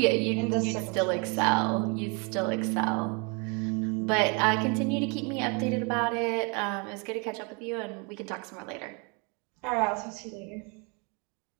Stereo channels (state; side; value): quieter; left; 32.8 dB